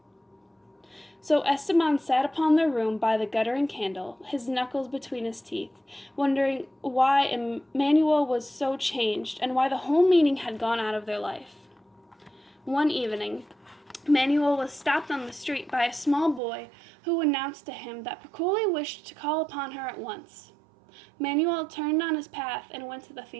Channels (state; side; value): drops out; left; at 16.4 s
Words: So Esteban sat upon their room by the guttering candle, his knuckles between his teeth, wondering why Emanuel was so changed and why the whole meaning had gone out of their life. One evening, Manuel was stopped on the street by a small boy who announced to him that Picoli wished to call upon her at once. Manuel turned on his path and went to the